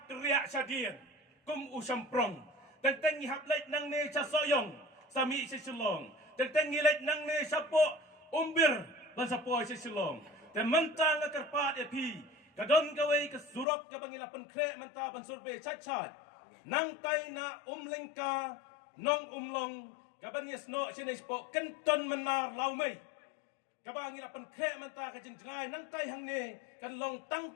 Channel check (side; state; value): right; drops out; at 13.7 s